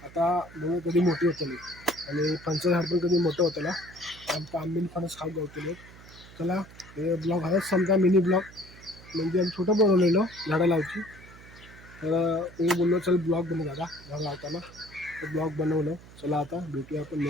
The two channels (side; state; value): right; noise; hum, 20 dB below the sound